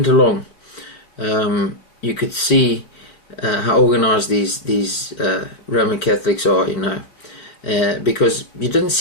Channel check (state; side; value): late; right; 4.4 ms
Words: along, you could see how organised these Roman Catholics are, because you didn't